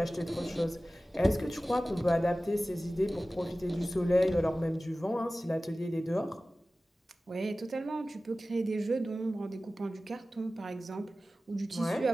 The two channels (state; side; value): normal; both; correlation 0.96